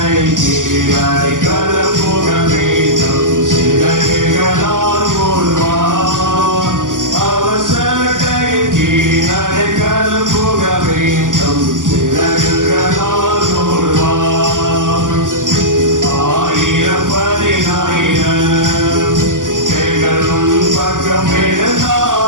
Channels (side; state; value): left; late; 0.88 ms